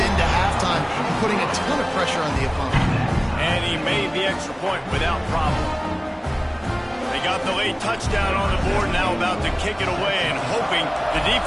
halftime, and putting a ton of pressure on the opponent. And he made the extra point without problem. They got the late touchdown on the board, now about to kick it away and hoping the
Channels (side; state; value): both; identical; correlation 1.00